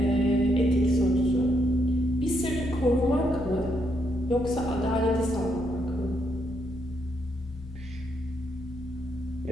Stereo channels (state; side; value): normal; both; correlation 0.77